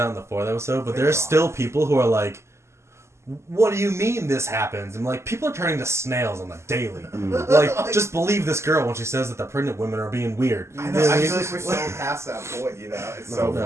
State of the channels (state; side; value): late; left; 0.13 ms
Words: in the 4th episode, but Thank there's God. still people who are like, what do you mean this happens? I'm like, people are turning to snails on the daily. Like, just believe this girl when she says that the pregnant women are being weird. I You know. what I mean? feel like we're so past that point. You know, it's so No,